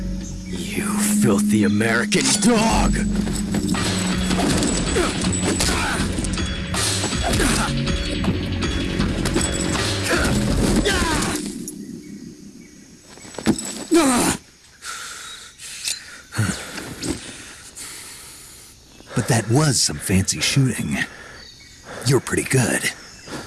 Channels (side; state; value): both; identical; correlation 1.00